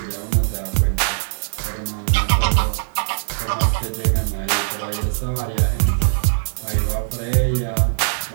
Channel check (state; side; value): silent; left; 65 dB below the other